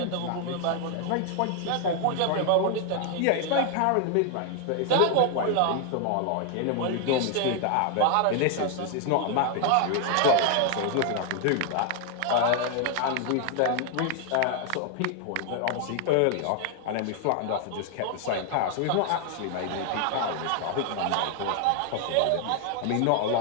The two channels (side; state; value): both; different; correlation 0.00